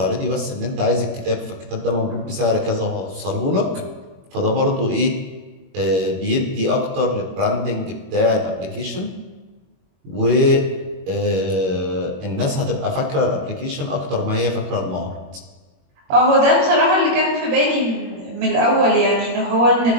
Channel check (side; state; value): left; late; 21 ms